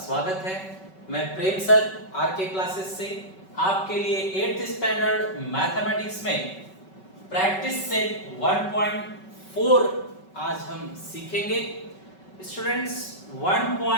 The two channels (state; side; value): late; right; 5.3 ms